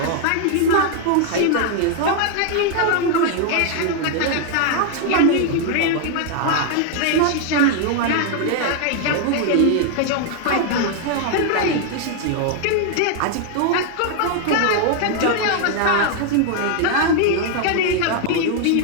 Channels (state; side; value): different; both; correlation 0.00